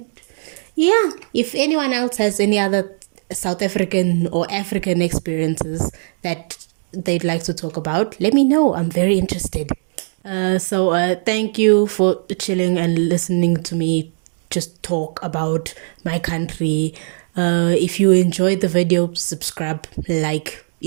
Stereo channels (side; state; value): left; silent; 59 dB below the other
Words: yeah, if anyone else has any other South African or African experiences that they'd like to talk about, let me know. I'm very interested. So thank you for chilling and listening to me just talk about my country. If you enjoyed the video, subscribe, like